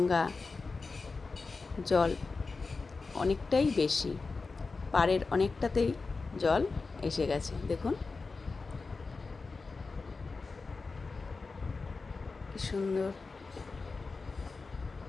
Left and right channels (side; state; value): right; quieter; 4.1 dB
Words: জল অনেকটাই বেশি, পাড়ের অনেকটাতেই জল এসে গেছে। দেখুন কি সুন্দর